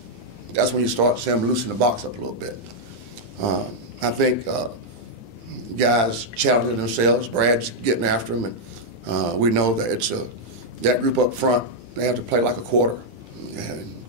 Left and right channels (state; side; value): late; left; 9.9 ms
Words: that's when you start seeing them loosen the box up a little bit. I think guys challenging themselves. Brad's getting after them, and we know that it's that group up front. They have to play like a quarter, and